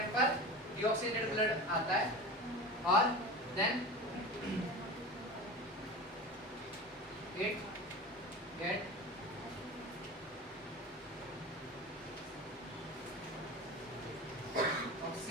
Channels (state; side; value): normal; both; correlation 0.30